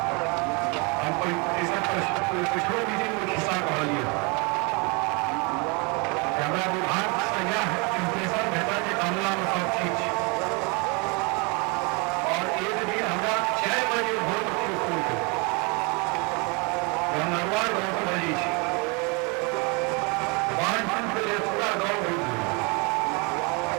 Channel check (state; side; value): quieter; left; 30.7 dB